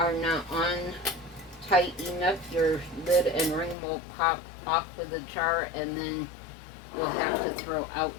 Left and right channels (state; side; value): drops out; right; at 3.8 s